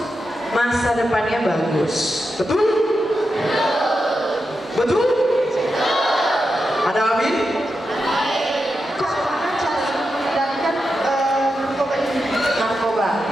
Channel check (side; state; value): both; normal; correlation 0.88